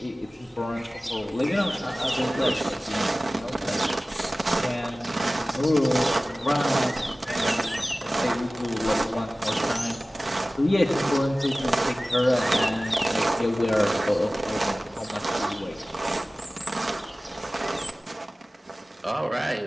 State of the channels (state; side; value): normal; both; correlation 0.97